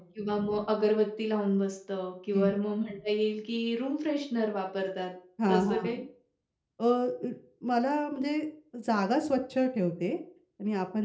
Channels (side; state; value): both; identical; correlation 1.00